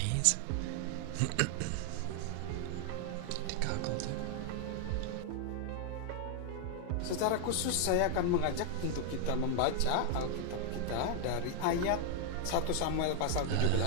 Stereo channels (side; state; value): both; different; correlation 0.00